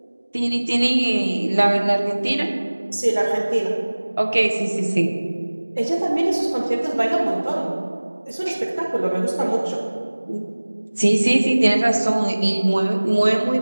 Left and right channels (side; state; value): both; inverted; correlation -1.00